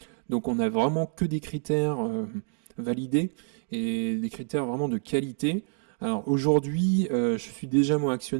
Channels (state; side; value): silent; left; 60 dB below the other